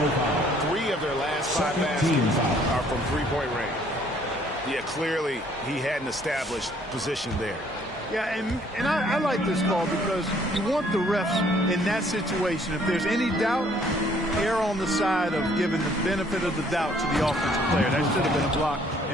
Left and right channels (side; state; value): both; normal; correlation 0.62